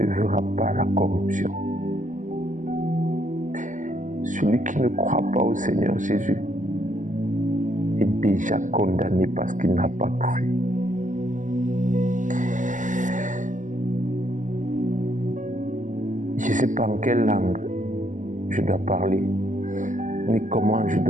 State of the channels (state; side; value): late; left; 0.37 ms